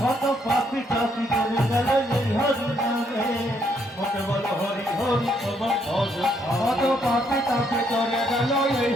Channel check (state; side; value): normal; both; correlation 0.72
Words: কত পাপি টাপি করে গেল এই হরি নামে মতে বল হরি হরি তোমার ভজ কত পাপে তাপে করে গেল এই